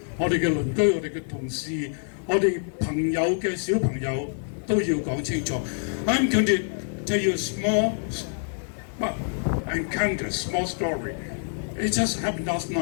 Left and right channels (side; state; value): right; silent; digital silence